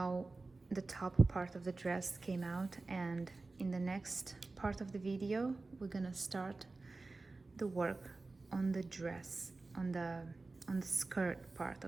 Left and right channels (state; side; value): quieter; left; 3.5 dB